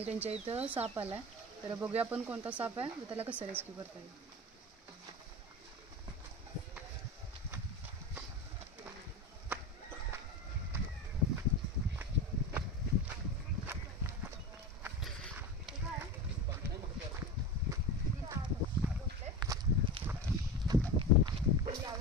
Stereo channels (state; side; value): normal; both; correlation 0.27